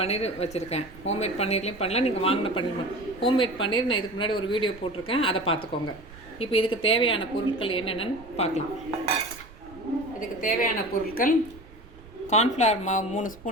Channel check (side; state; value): right; noise; rumble, 20 dB below the sound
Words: வச்சுருக்கேன். ஹோம்மேட் பன்னீர்லேயும் பண்ணலாம், நீங்கள் வாங்கின பன்னீர். ஹோம்மேட் பன்னீர் நான் இதுக்கு முன்னாடி ஒரு வீடியோ போட்டிருக்கேன், அதை பார்த்துக்கோங்க. இப்போ இதுக்கு தேவையான பொருட்கள் என்னென்னு பார்க்கலாம். இதுக்கு தேவையான பொருட்கள்: கார்ன்ஃப்ளவர் மாவு 3